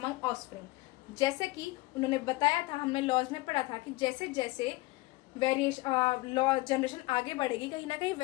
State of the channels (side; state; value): right; quieter; 21.4 dB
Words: offspring. जैसे कि उन्होंने बताया था, हमने लॉज में पढ़ा था कि जैसे जैसे लॉ जनरेशन आगे बढ़ेगी, कहीं ना कहीं